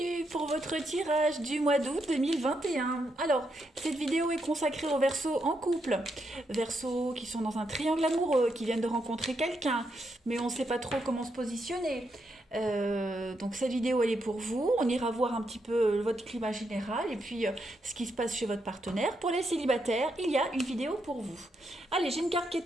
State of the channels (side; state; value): both; normal; correlation 0.80